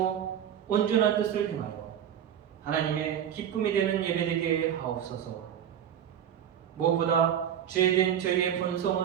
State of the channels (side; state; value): left; quieter; 9.5 dB